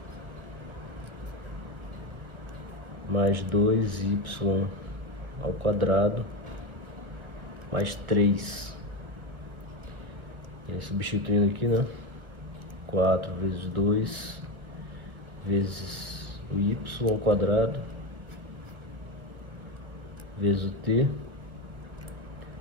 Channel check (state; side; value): late; left; 1.6 ms